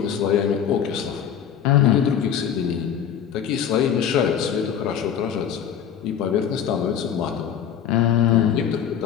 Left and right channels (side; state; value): right; quieter; 8.8 dB